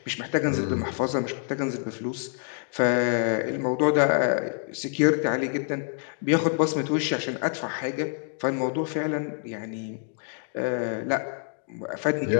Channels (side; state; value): right; silent; 56 dB below the other